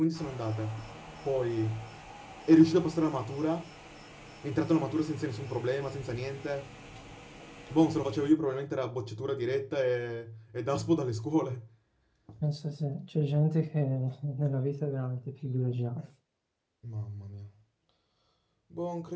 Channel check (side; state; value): both; identical; correlation 1.00